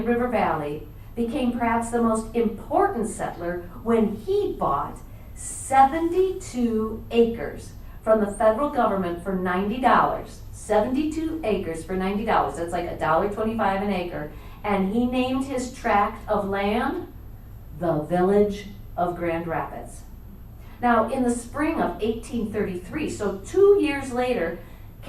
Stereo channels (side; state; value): both; identical; correlation 1.00